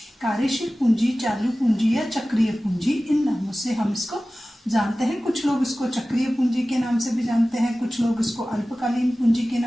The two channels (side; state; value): both; normal; correlation 0.97